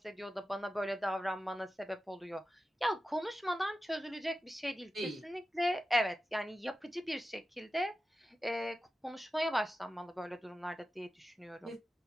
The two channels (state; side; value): normal; both; correlation 0.93